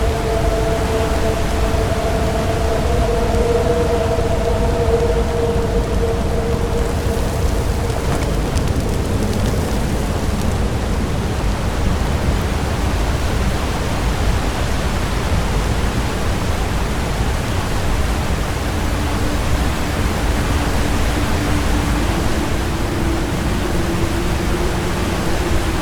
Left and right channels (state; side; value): identical; both; correlation 1.00